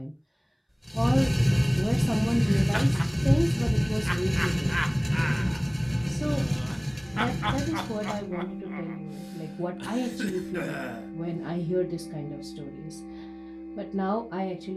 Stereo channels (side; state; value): both; identical; correlation 1.00